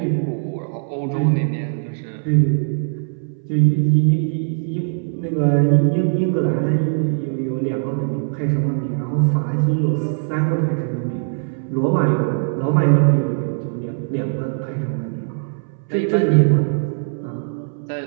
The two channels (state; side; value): silent; left; 64 dB below the other